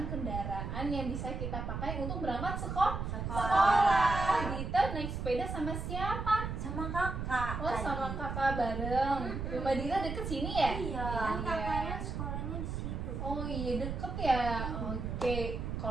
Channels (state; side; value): noise; right; rumble, 4 dB below the sound